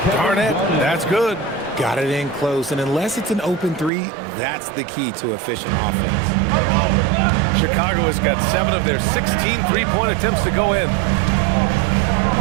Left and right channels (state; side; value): drops out; left; at 3.9 s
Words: Garnett, that's good. Got it in close, and unless it's an open 3, that's the key to efficient offense. Chicago has got 7 of their 16 three-point attempts to go in.